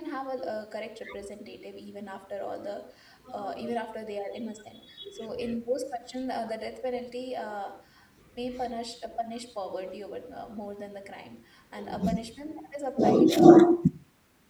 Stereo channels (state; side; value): identical; both; correlation 1.00